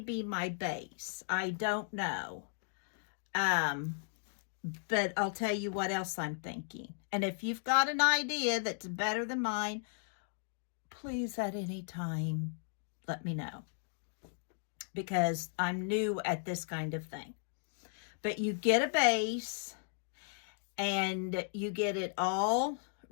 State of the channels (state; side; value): silent; right; digital silence